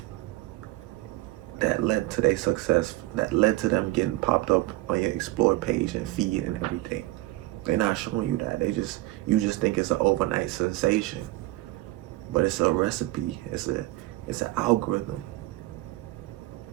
that led to their success, that led to them getting popped up on your explore page and feed and everything. They're not showing you that. You just think it's an overnight sensation. But it's a recipe. It's an algorithm.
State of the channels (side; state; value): left; quieter; 18.8 dB